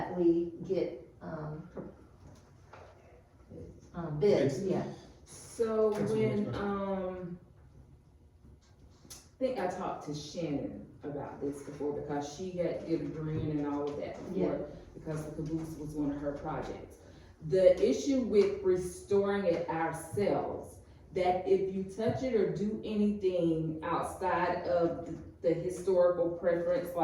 we get, bids, yeah. So Councilwoman when, I think I talked to Shannon about this before, because she had did a green and all of that before, because the caboose was one of her projects. The issue with restoring it ourselves, that if you touch it or do anything outside of the historical preference,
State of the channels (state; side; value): identical; both; correlation 1.00